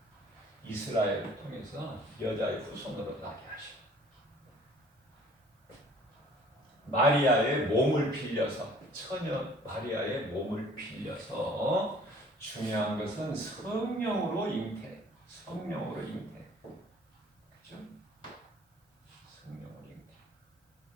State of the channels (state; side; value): normal; both; correlation 0.53